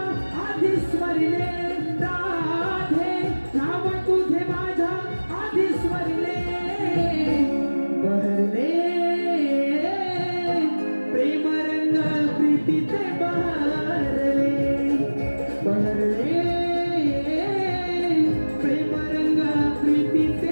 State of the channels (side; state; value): both; inverted; correlation -1.00